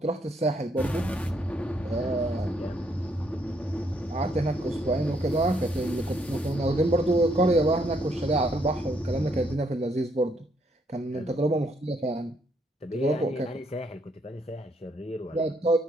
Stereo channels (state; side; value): normal; both; correlation 0.72